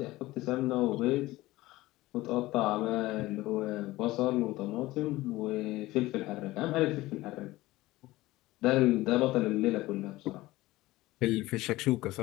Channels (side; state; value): right; quieter; 18.2 dB